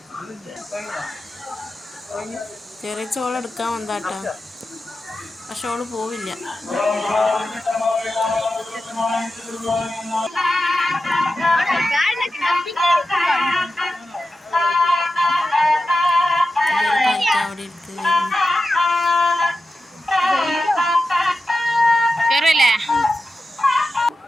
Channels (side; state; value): both; normal; correlation 0.92